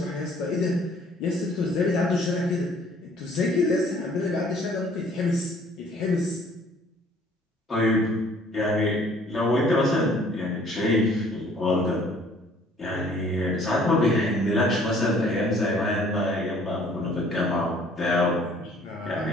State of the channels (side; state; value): both; normal; correlation 0.57